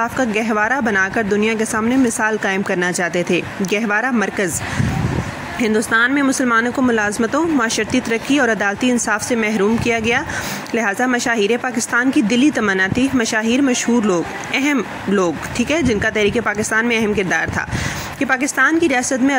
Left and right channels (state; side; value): identical; both; correlation 1.00